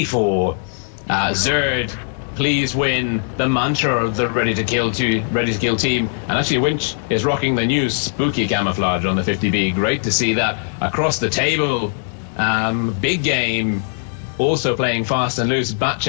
Zerd, please win, the mantra of the Ready to Kill team. And actually Winch is rocking the new spooky camouflage on the 50B. Great to see that across the table. Big Game also playing fast and loose.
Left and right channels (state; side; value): silent; right; digital silence